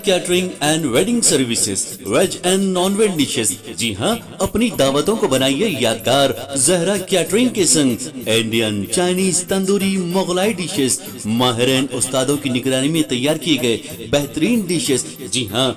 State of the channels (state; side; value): identical; both; correlation 1.00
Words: catering and wedding services, veg and non veg dishes. जी हाँ, अपनी दावतों को बनाइए यादगार जहरा कैटरिंग के संग। Indian, Chinese, tandoori, Mughlai dishes माहिरीन उस्तादों की निगरानी में तैयार किए गए बेहतरीन डिशेस। जी हाँ,